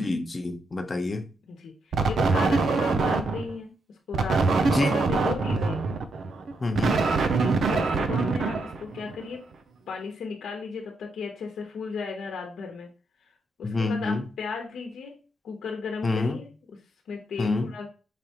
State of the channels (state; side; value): normal; both; correlation 0.80